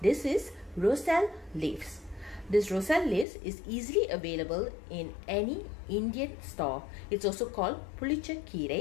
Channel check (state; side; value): drops out; right; at 3.2 s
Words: This is roselle leaves. This roselle leaves is easily available in any Indian store. It's also called Pulicha